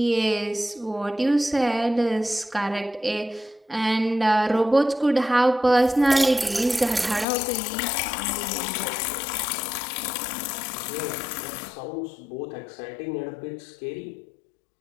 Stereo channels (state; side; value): drops out; right; at 7.2 s